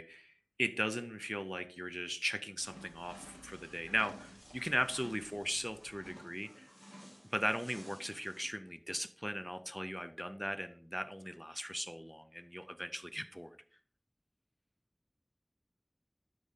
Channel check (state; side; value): identical; both; correlation 1.00